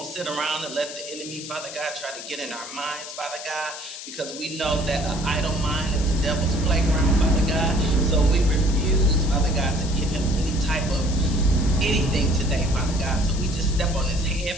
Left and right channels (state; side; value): noise; left; hiss, 11 dB below the sound